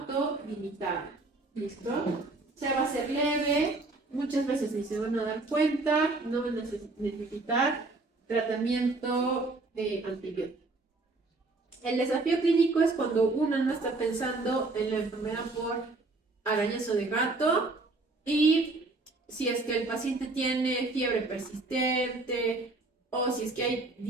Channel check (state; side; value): quieter; left; 3.3 dB